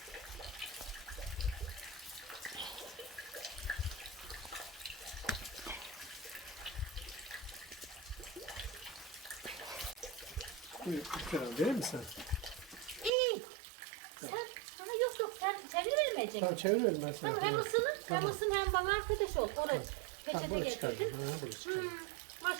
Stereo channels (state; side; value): drops out; left; at 13.1 s